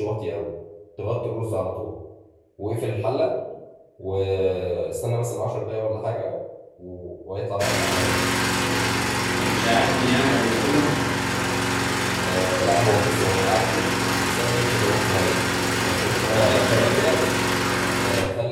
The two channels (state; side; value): identical; both; correlation 1.00